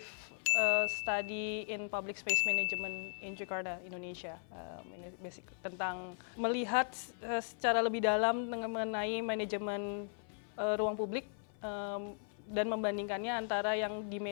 study in public space management in Jakarta, Indonesia. Ini basic tentang melihat secara lebih dalam mengenai manajemen ruang publik dan membandingkannya antara yang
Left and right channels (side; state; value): right; silent; 53 dB below the other